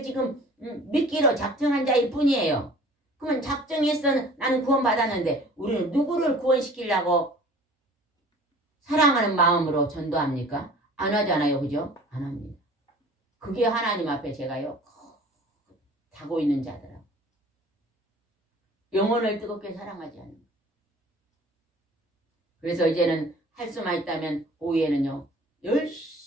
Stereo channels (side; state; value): both; normal; correlation 0.47